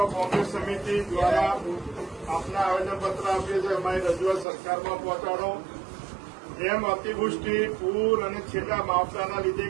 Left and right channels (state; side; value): drops out; left; at 4.5 s